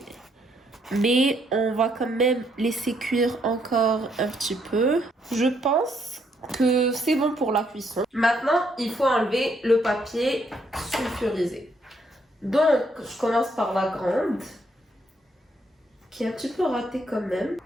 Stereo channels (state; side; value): normal; both; correlation 0.72